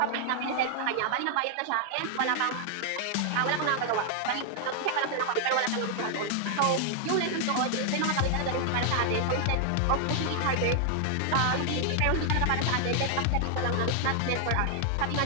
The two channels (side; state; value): both; different; correlation -0.01